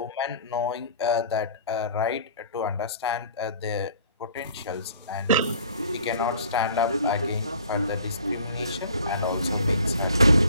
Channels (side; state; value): both; inverted; correlation -0.50